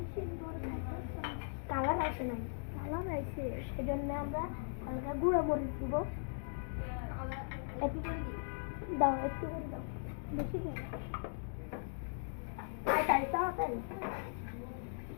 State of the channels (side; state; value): right; silent; digital silence